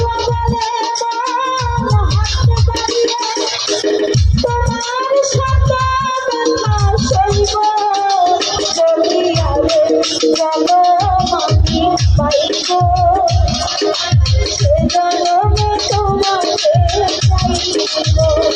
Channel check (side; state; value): both; identical; correlation 1.00